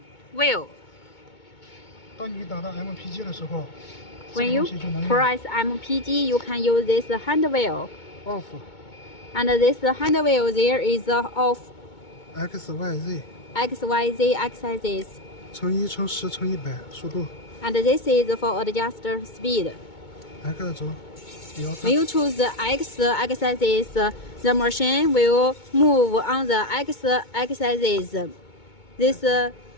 wheel. 当你打到 MPG 的时候， When you press MPG, you can use this hand wheel. Off. And this hand wheel there is off. XYZ. XYZ exercises. 乘1乘10乘100速度。And this is for adjust speed. X 轴。When you choose the X exercises, the machine will move on the X exercises. This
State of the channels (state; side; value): late; right; 2.2 ms